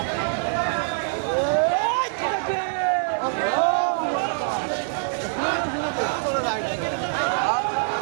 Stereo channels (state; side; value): silent; left; digital silence